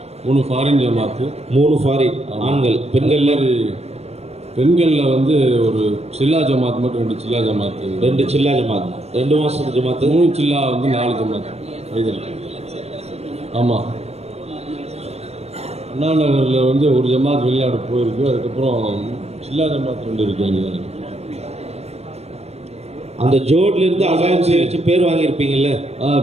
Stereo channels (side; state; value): left; late; 0.31 ms